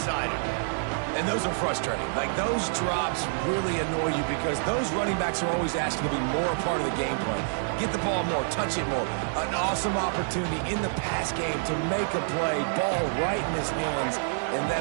And those are frustrating. Like, those drops really annoy you because those running backs are always asking to be more a part of the game plan. Get the ball more, touch it more. An awesome opportunity in the pass game to make a play, ball right in his hands, and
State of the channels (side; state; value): left; silent; digital silence